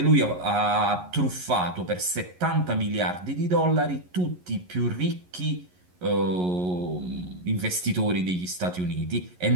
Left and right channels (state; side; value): late; left; 11 ms